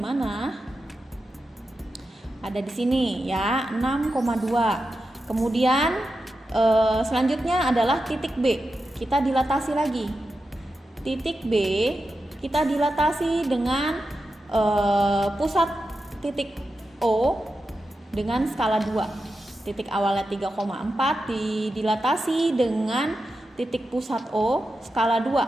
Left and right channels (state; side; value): normal; both; correlation 0.90